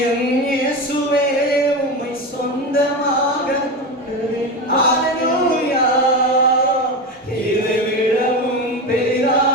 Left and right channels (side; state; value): both; normal; correlation 0.21